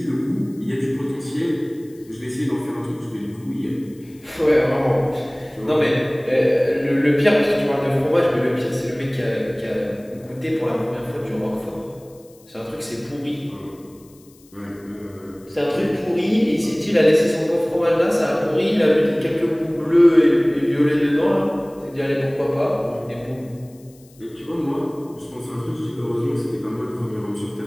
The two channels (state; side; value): noise; left; hiss, 28 dB below the sound